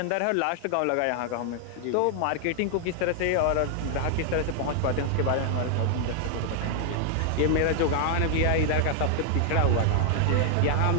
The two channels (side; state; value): both; different; correlation 0.00